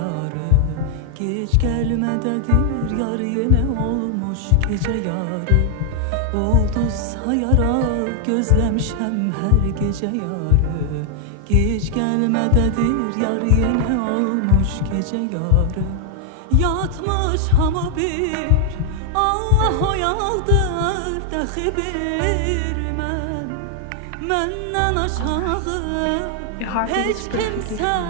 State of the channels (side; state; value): both; different; correlation 0.00